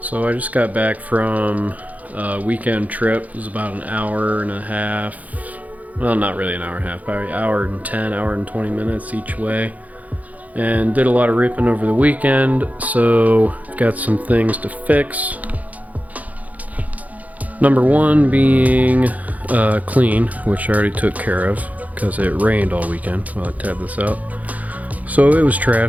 So I just got back from a weekend trip. It was about an hour and a half. Well, not really an hour and a half, probably hour and 10, hour and 20 minutes each way. And did a lot of ripping over the weekend, so I've got some things to fix. Number one being clean, which I already took care of because it rained all weekend while I tabbed this out. So it was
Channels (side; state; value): left; late; 0.075 ms